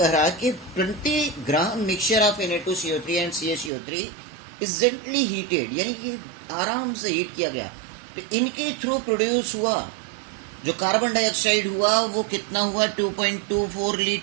रहा है कि 20 ग्राम mixture of Na2CO3 and CaCO3 is gently heated, यानी कि आराम से हीट किया गया, तो इनके थ्रू प्रोड्यूस हुआ जो कार्बन डाइऑक्साइड हुआ वो कितना हुआ? 2.24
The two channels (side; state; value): left; drops out; at 3.7 s